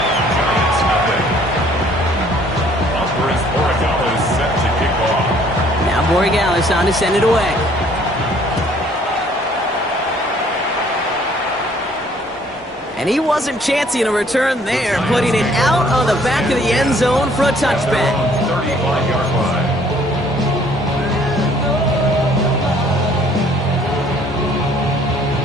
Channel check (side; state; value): both; normal; correlation 0.59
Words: Now Borregales on to send it away. And he wasn't chancing a return there, putting it out on the back of the end zone for a touchback.